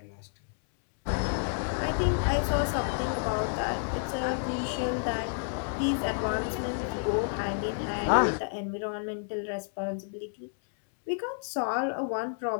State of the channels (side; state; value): right; silent; 58 dB below the other